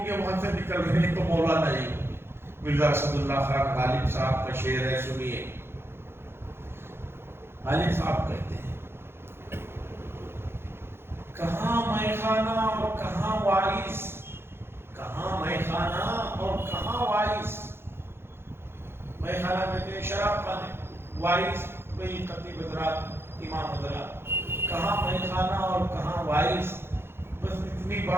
گے، وہاں سے نکل رہے ہیں تو مولانا ہی ہوں گے۔ مرزا اسد اللہ خان غالب صاحب کا شعر ہے، سنیے۔ غالب صاحب کہتے ہیں، کہاں میخانہ اور کہاں وائس، کہاں میخانہ اور کہاں وائس۔ میخانہ کہتے ہیں شراب خانے، وائس بھئی خطیب حضرات، امام حضرات، کہاں میخانہ اور کہاں وائس۔ بس اتنی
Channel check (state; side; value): late; left; 0.11 ms